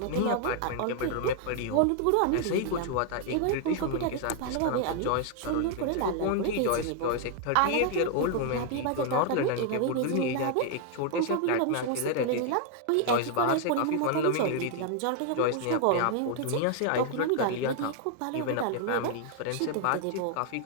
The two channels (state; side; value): different; both; correlation 0.00